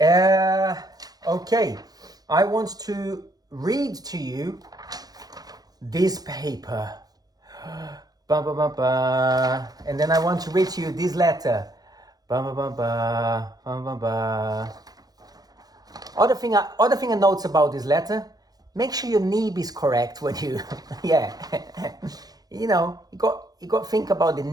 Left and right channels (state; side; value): late; left; 0.19 ms